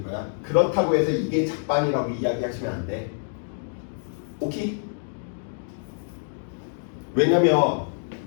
거야. 그렇다고 해서 이게 작반이라고 이야기하시면 안 돼. 오케이? 왜냐면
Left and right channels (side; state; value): right; silent; digital silence